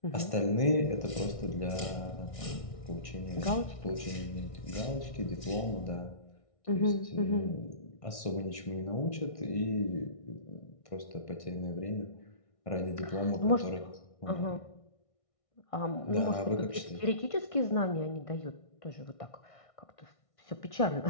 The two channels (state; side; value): late; right; 1.6 ms